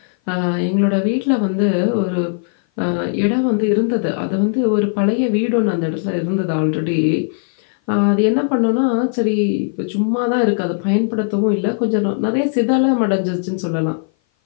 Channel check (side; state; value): right; silent; 56 dB below the other